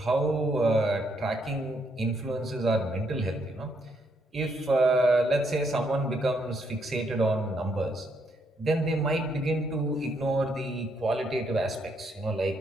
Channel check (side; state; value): both; normal; correlation 0.74